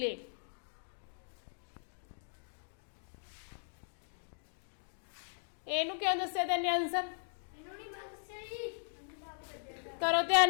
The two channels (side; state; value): right; silent; digital silence